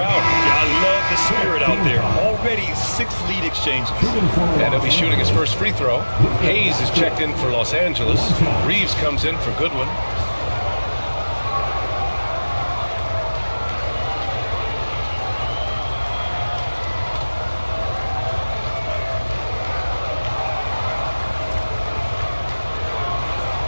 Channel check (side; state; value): both; inverted; correlation -1.00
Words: out. Yeah, I love the spirit out there. Already 6 lead exchanges. And he'll be shooting his first free throw. Hayes is checked in for Los Angeles. Reeves comes in for Goodwin.